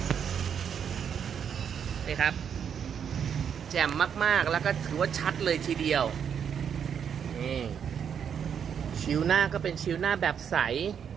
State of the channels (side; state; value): left; quieter; 7.8 dB